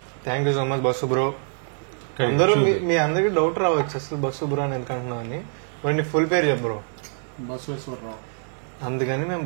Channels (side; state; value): left; silent; 62 dB below the other